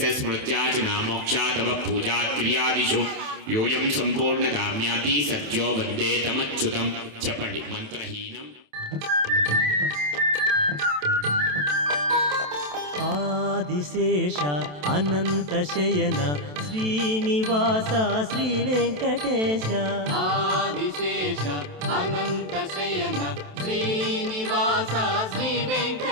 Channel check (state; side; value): late; left; 27 ms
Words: स्मृत्याचना मोक्षातव पूजा क्रियादिषु योयं संपूर्णदाम्याति सत्यो वन्दे तमच्युतं चपण्डि मंत्रहीनम् ఆదిశేష అనంతశయన శ్రీనివాస శ్రీ వెంకటేశ ఆదిశేష అనంత శయన శ్రీనివాస శ్రీ